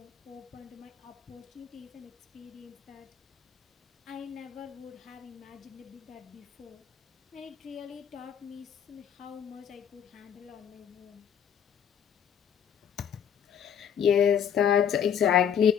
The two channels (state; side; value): quieter; right; 8.3 dB